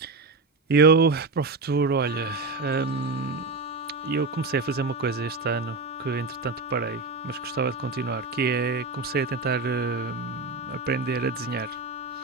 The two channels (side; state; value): left; quieter; 3.7 dB